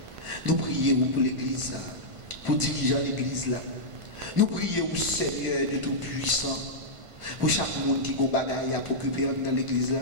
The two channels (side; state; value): left; late; 1.5 ms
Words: Nous prions pour l'Église, pour diriger l'Église là. Nous prions, Seigneur de Tout-Puissant, pour chaque monde qui a des bagailles à occuper dans l'Église là.